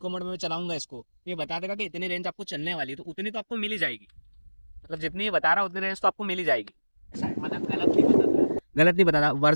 मोड में मैं चलाऊंगा इसको, तो ये बता देगा कि इतनी रेंज आपको चलने वाली है, तो उतनी तो आपको मिल ही जाएगी। मतलब जितनी ये बता रहा है उतनी रेंज तो आपको मिल ही जाएगी। ऐसा है। मतलब गलत नहीं बताता है? गलत नहीं बताता,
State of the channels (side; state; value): both; inverted; correlation -1.00